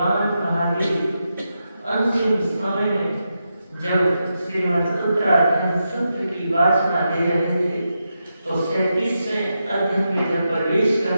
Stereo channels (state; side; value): inverted; both; correlation -0.87